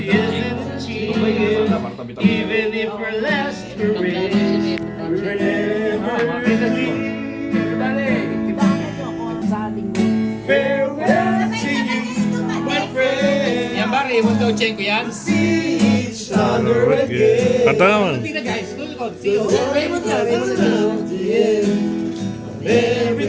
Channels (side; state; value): both; identical; correlation 1.00